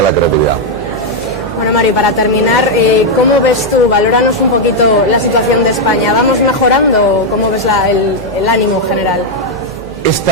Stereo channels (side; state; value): right; noise; hum, 16 dB below the sound